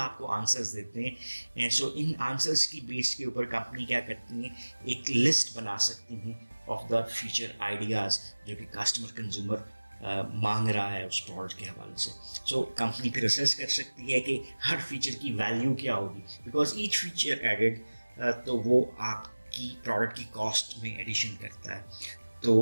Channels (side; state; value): both; inverted; correlation -1.00